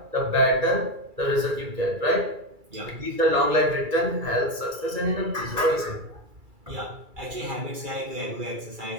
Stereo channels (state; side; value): late; left; 2.3 ms